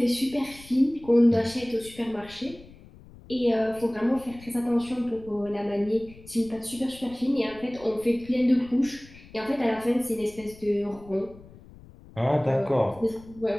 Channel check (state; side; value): noise; left; rumble, 21 dB below the sound